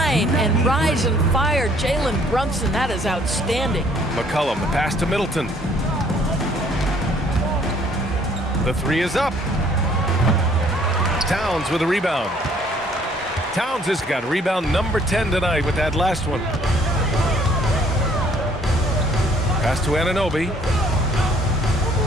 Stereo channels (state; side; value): normal; both; correlation 0.61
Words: and rise and fire. Jalen Brunson, that is outstanding. McCollum, the pass to Middleton. The 3 is up. Towns with a rebound. Towns has got rebound number 10 tonight with that last one. Pass to Anunoby.